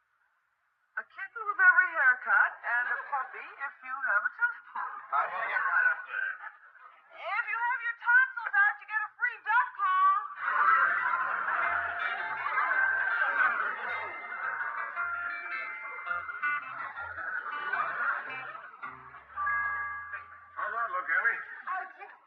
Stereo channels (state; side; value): identical; both; correlation 1.00